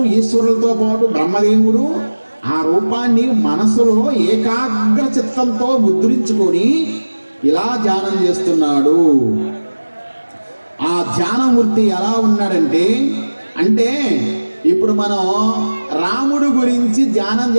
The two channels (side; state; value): both; inverted; correlation -1.00